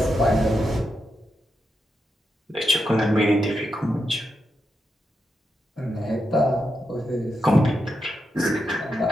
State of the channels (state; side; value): normal; both; correlation 0.85